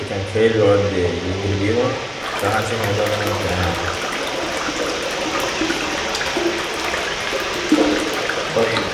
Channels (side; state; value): both; identical; correlation 1.00